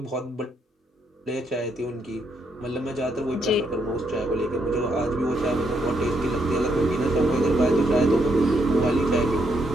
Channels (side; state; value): both; normal; correlation 0.76